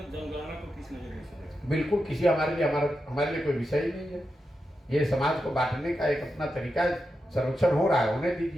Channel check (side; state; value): both; normal; correlation 0.88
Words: जनगणना को किस नजरिए से देखते हैं? बिल्कुल किसी हमारे लिए कोई विषय ही नहीं है। ये समाज को बांटने का एक अपना तरीका है, सर्वेक्षण हो रहा है, होने